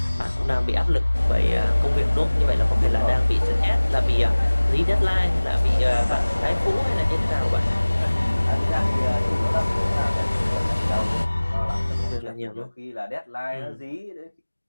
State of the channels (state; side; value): inverted; both; correlation -1.00